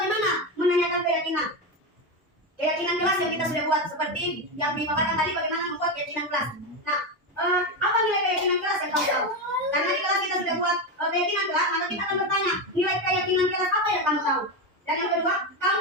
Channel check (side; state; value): both; normal; correlation 0.13